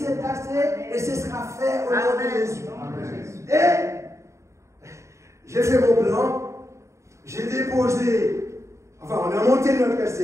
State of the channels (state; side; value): late; left; 0.14 ms